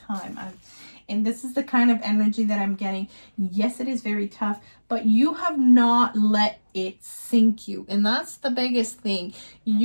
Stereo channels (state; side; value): inverted; both; correlation -1.00